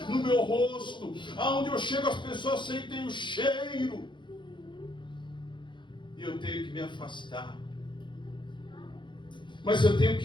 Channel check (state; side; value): late; right; 0.23 ms